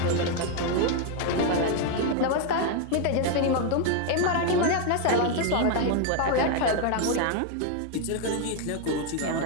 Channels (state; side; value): different; both; correlation 0.01